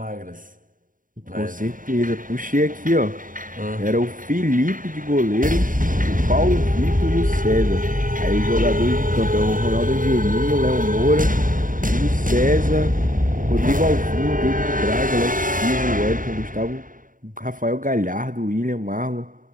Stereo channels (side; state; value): left; late; 0.39 ms